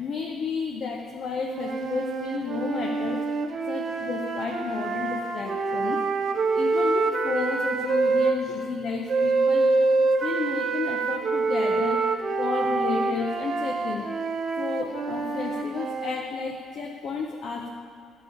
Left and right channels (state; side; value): normal; both; correlation 0.77